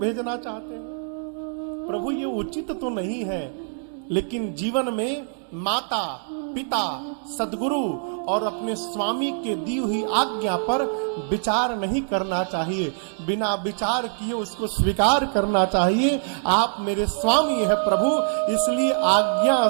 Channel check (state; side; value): silent; left; digital silence